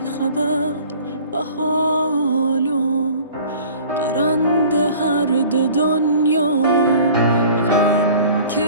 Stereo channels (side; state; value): both; inverted; correlation -0.46